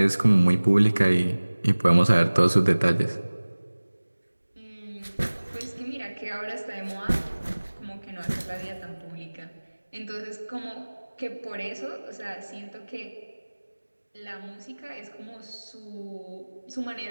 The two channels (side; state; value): both; inverted; correlation -1.00